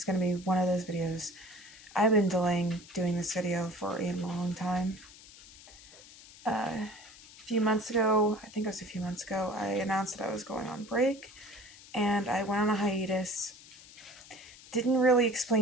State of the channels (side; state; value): left; noise; hiss, 20 dB below the sound